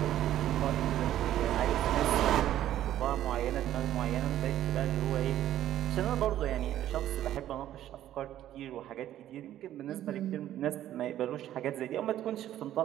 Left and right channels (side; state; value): left; quieter; 12.3 dB